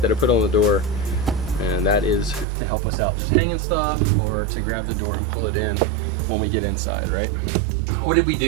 I put on the door, and that is to help us out, just hanging stuff or to grab the door and pull it in when we get inside, right? What did we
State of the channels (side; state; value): left; drops out; at 2.5 s